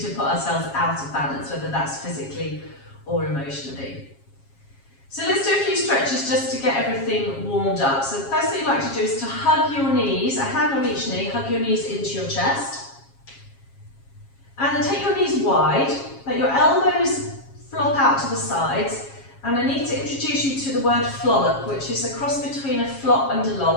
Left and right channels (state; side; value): late; right; 7.3 ms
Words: to put ourselves out of balance, whether that's physically or emotionally. So let's do a few stretches just to get everything warmed up. So the first thing you'd like to do is to hug your knees, a hand on each knee, hug your knees into your chest. And then take your knees wide, let your elbows flop out to the sides, and I need to introduce you to the word flollop, which is a cross between a flop and a